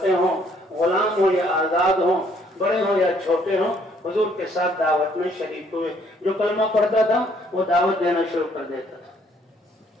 ہوں، غلام ہوں یا آزاد ہوں، بڑے ہوں یا چھوٹے ہوں، حضور کے ساتھ دعوت میں شریک ہوئے. جو کلمہ پڑھتا تھا وہ دعوت دینا شروع کر دیتا تھا.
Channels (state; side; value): normal; both; correlation 0.65